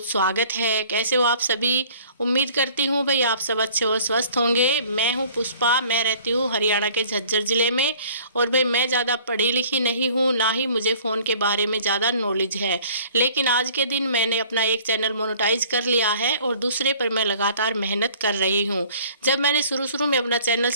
स्वागत है। कैसे हो आप सभी? उम्मीद करती हूँ भाई आप सब अच्छे और स्वस्थ होंगे। मैं हूँ पुष्पा, मैं रहती हूँ हरियाणा के झज्जर ज़िले में। और भाई मैं ज़्यादा पढ़ी लिखी नहीं हूँ, ना ही मुझे फ़ोन के बारे में ज़्यादा नॉलेज है। लेकिन आज के दिन मैंने अपना एक चैनल मोनेटाइज कर लिया है और दूसरे पर मैं लगातार मेहनत कर रही हूँ। जब मैंने शुरू में अपना चैनल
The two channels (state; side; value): inverted; both; correlation -0.53